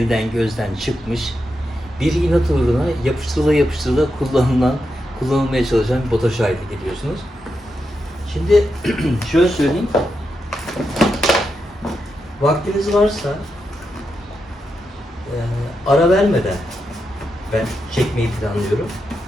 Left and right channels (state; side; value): normal; both; correlation 0.86